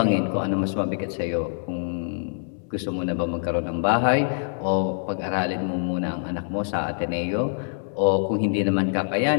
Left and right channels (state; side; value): silent; right; 62 dB below the other